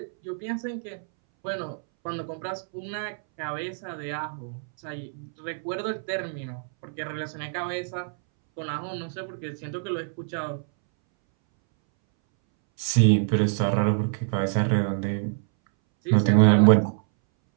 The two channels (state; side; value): silent; left; 61 dB below the other